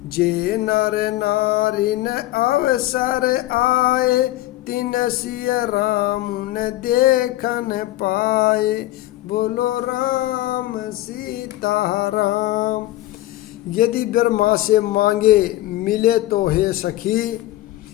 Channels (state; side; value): quieter; right; 16.1 dB